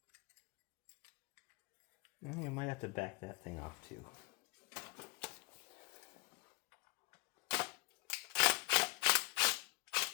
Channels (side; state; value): right; quieter; 25.3 dB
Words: You might have to back that thing off too.